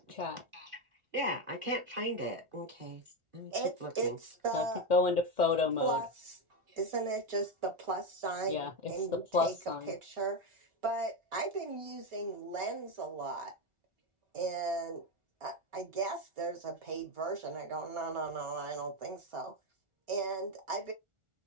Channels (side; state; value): left; late; 1.4 ms